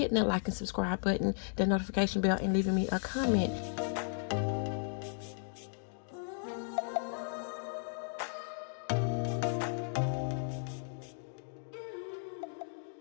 that like and subscribe button, the notification bell, and leaving me a comment.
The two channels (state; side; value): silent; right; digital silence